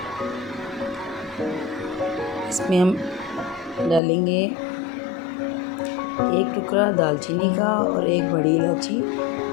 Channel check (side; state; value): right; drops out; at 4.0 s